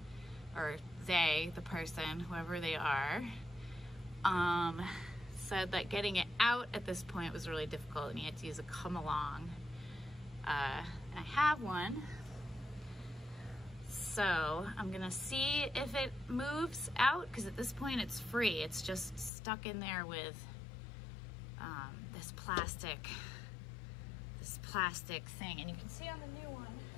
or they, the person, whoever they are, said that getting it out at this point was really difficult and he had to use a come along. And I have one. So I'm gonna see if it moves out, because at this point it's free. It's just stuck in there with this plastic thing. And you can see on the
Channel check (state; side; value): drops out; right; at 19.3 s